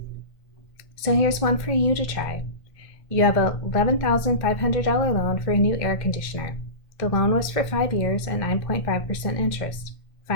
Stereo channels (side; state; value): right; late; 1.5 ms